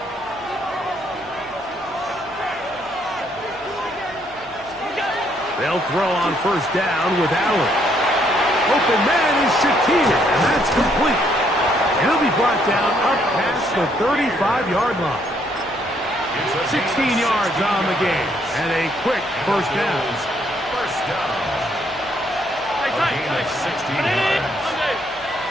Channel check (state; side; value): noise; left; hum, 27 dB below the sound